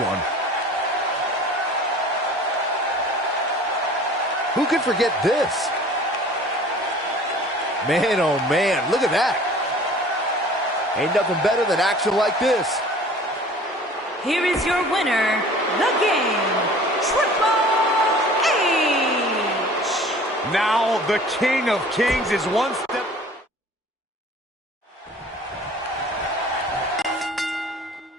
Who could forget this? Man, oh man, look at that. Ain't nothing better than action like this. Here is your winner, the game, Triple H. Now the King of Kings is one step.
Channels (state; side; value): normal; both; correlation 0.47